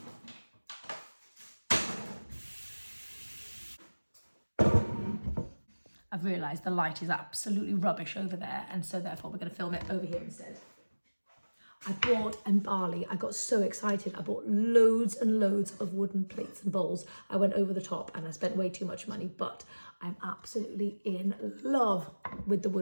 I've realised the light is absolutely rubbish over there, and so therefore we're going to film it over here instead. I bought, in Bali, I got so excited, I bought loads and loads of wooden plates and bowls. I went over the top and I spent way too much money, but I'm absolutely in love with the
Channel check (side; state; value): both; inverted; correlation -1.00